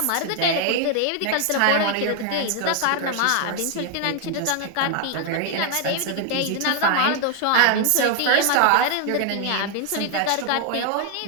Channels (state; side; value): different; both; correlation 0.00